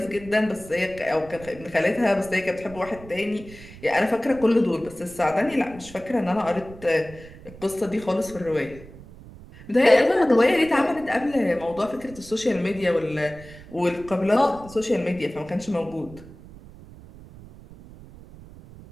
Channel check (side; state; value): right; noise; rumble, 18 dB below the sound